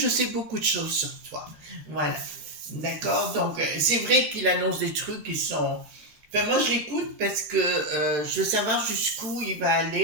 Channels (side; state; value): left; late; 13 ms